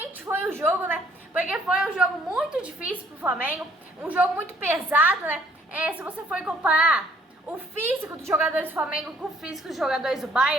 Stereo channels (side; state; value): both; normal; correlation 0.61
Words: foi o jogo, né? Porque foi um jogo muito difícil pro Flamengo, um jogo muito pesado, né? Se você for comparar o físico dos jogadores do Flamengo com o físico dos jogadores do